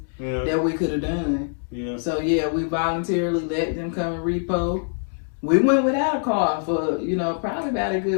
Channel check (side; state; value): right; silent; digital silence